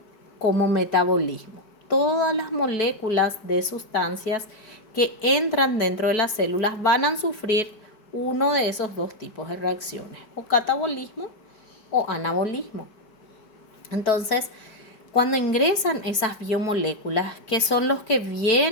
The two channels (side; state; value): right; late; 4.6 ms